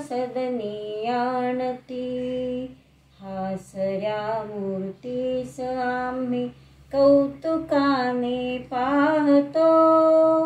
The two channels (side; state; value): both; identical; correlation 1.00